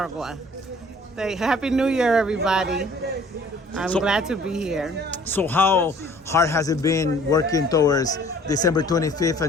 Happy New Year, everybody. I'm glad to be here. So how hard has it been working towards December 25th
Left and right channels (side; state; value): both; normal; correlation 0.54